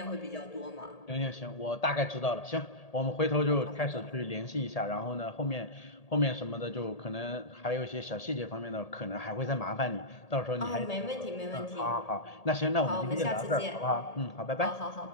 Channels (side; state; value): right; late; 1.8 ms